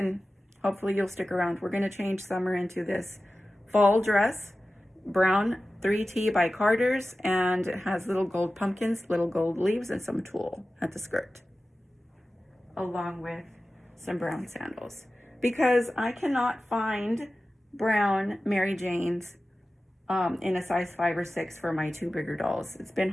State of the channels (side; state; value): both; normal; correlation 0.95